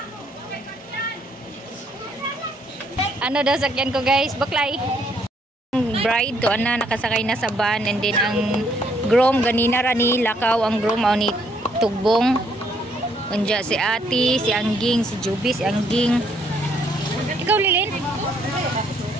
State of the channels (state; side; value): normal; both; correlation 0.69